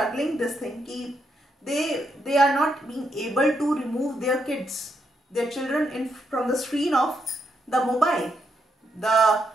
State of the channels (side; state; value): both; normal; correlation 0.79